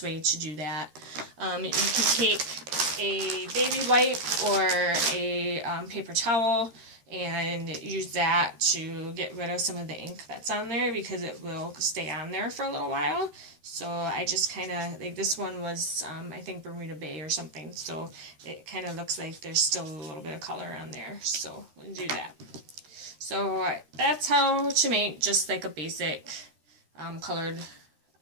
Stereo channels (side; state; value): left; late; 13 ms